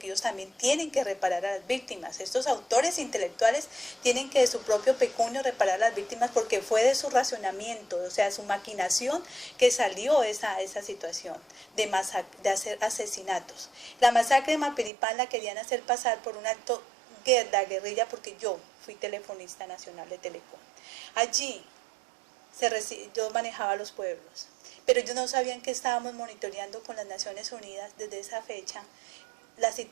ellos también tienen que reparar a las víctimas. Estos autores intelectuales tienen que de su propio pecunio reparar a las víctimas, porque fue de su racionamiento, o sea, su maquinación, que salió esa situación de hacer asesinatos. La masacre de Mapiripán la querían hacer pasar por un acto de guerrilla, porque yo fui telefonista nacional de Telecom. Allí yo manejaba los pueblos, pero ellos no sabían que estábamos monitoreando con las Naciones Unidas desde esa fecha la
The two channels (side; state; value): left; drops out; at 14.9 s